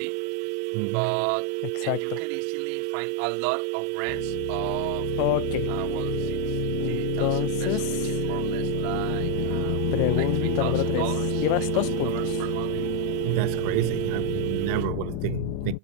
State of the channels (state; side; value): different; both; correlation 0.00